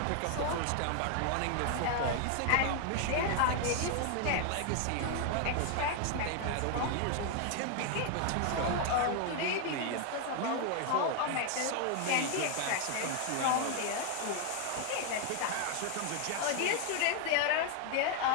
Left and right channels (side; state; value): both; different; correlation 0.00